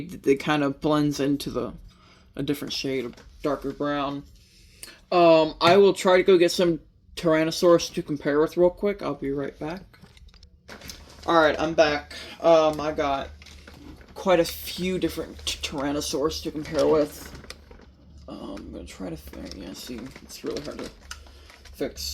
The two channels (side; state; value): both; identical; correlation 1.00